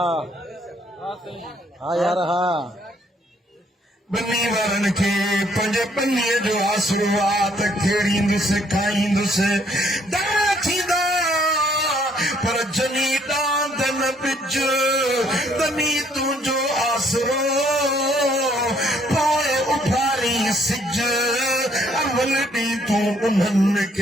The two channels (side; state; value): both; normal; correlation 0.66